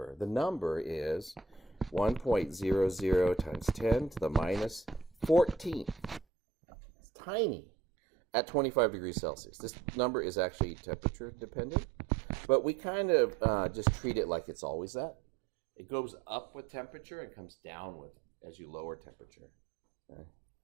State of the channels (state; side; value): drops out; left; at 6.2 s